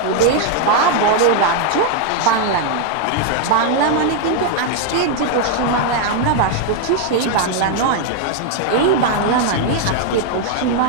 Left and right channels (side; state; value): both; different; correlation 0.00